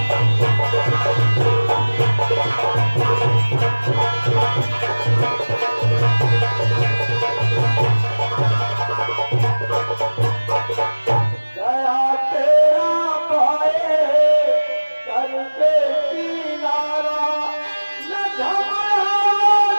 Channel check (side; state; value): both; inverted; correlation -1.00